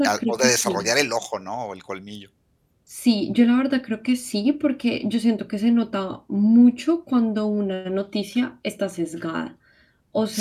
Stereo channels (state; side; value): identical; both; correlation 1.00